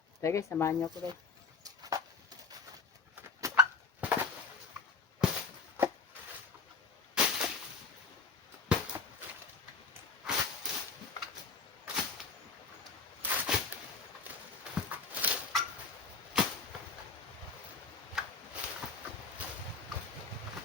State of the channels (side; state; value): right; quieter; 4.4 dB